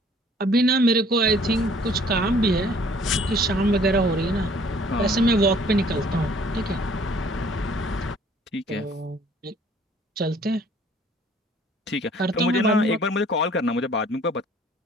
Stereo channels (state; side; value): normal; both; correlation 0.56